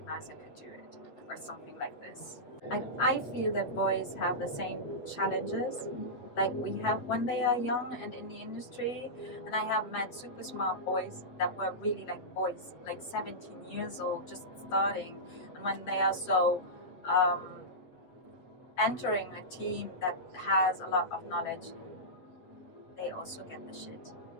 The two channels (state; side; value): late; right; 8.0 ms